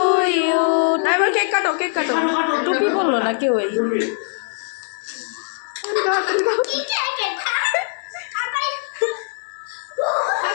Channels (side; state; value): right; silent; 63 dB below the other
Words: you. এবার cake কাটো টুপি বললো না কেউ এই